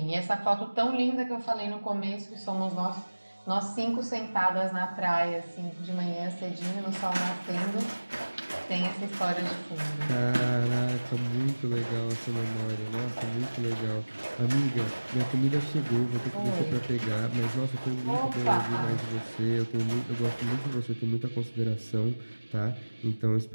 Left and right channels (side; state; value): both; inverted; correlation -1.00